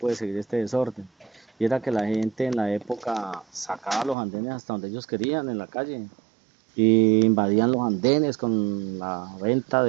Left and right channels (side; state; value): left; drops out; at 4.2 s